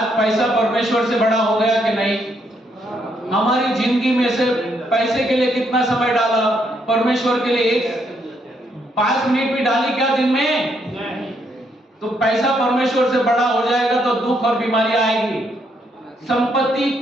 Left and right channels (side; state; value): both; normal; correlation 0.74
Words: पैसा परमेश्वर से बड़ा हो गया कि नहीं? हमारी जिंदगी में से पैसे के लिए कितना समय डाला, परमेश्वर के लिए 5 मिनट भी डाली क्या दिन में? तो पैसा परमेश्वर से बड़ा हो जाएगा तो दुख और बीमारी आएगी। संपत्ति